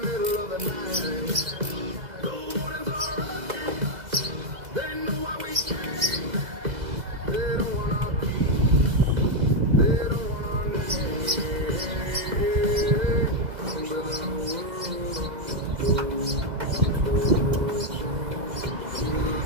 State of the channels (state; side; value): late; left; 2.0 ms